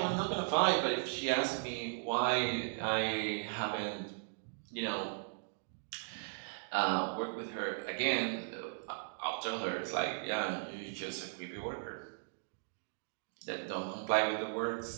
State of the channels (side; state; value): left; silent; digital silence